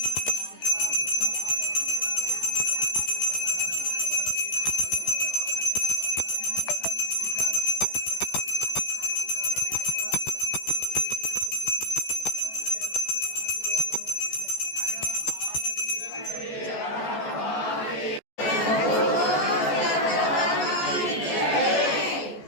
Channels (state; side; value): late; right; 14 ms